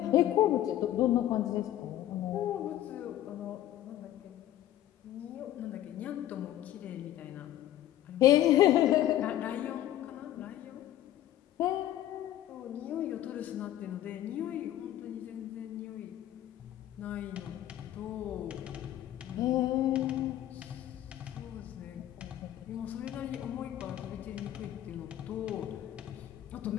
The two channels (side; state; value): right; quieter; 12.8 dB